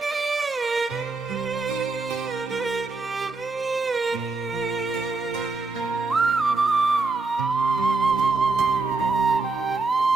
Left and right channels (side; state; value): left; quieter; 3.7 dB